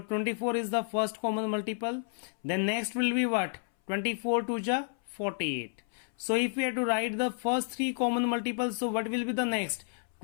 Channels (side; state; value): right; silent; 57 dB below the other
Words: 24 is the first common multiple. Then next will be what? 24 2 ja 48. So if we have to write the first three common multiples, so what will be the next?